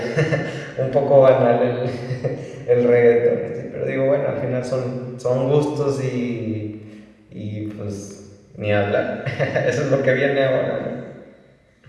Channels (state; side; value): identical; both; correlation 1.00